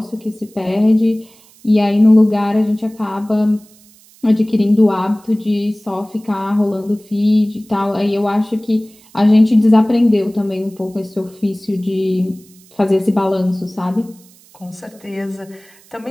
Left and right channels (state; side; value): noise; right; hiss, 27 dB below the sound